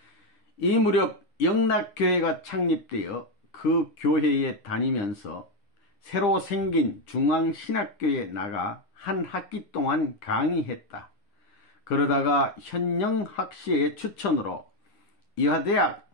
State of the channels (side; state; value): right; late; 9.9 ms